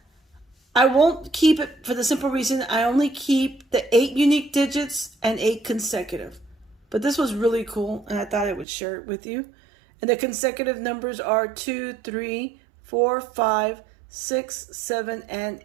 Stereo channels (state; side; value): drops out; left; at 8.7 s